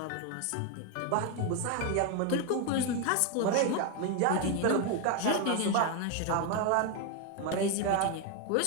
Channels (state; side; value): different; both; correlation 0.01